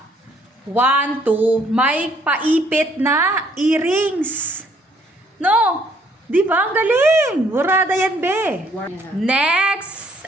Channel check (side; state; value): both; normal; correlation 0.65